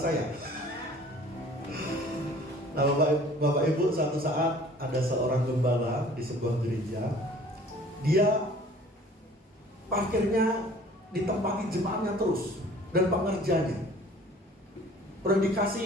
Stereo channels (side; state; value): both; normal; correlation 0.50